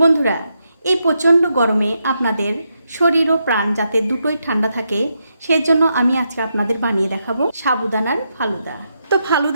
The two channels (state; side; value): inverted; both; correlation -0.82